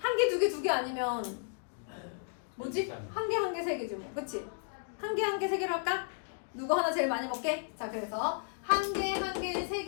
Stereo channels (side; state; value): right; silent; digital silence